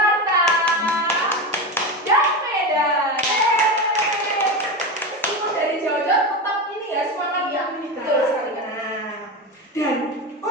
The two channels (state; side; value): normal; both; correlation 0.20